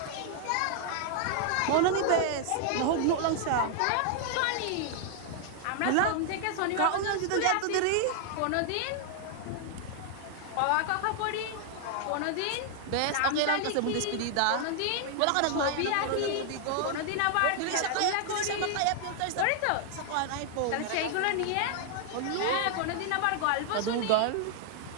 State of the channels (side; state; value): both; different; correlation 0.00